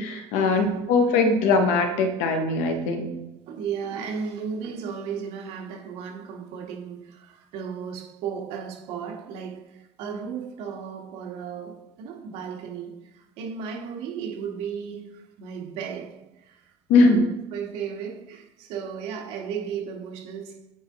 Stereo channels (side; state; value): both; normal; correlation 0.45